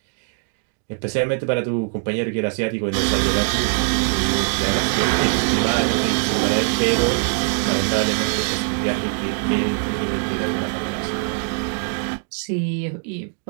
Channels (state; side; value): silent; left; 57 dB below the other